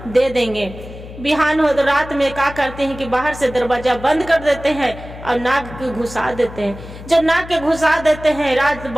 दे देंगे। बिहान हो तो रात में क्या करते हैं कि बाहर से दरवाजा बंद कर देते हैं और नाग के घुसा देते हैं। जब नाग के घुसा देते हैं, रात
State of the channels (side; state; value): left; noise; hum, 14 dB below the sound